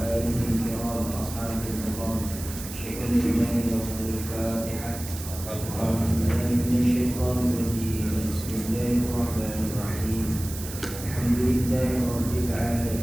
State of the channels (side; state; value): right; noise; hiss, 11 dB below the sound